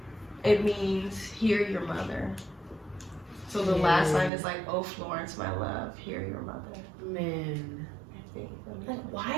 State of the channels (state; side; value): drops out; left; at 4.3 s